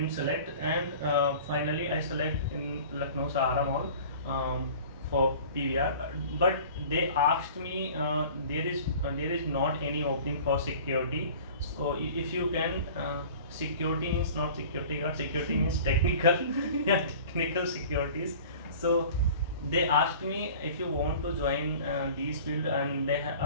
select. And finally I select in Lucknow Sahara Mall, for PVR. But they asked me, there is not any opening for security. So if you can, security means not security guard, security means technical, yeah, technical securities. So they asked me, if you want to join these field. And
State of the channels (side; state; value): both; inverted; correlation -0.43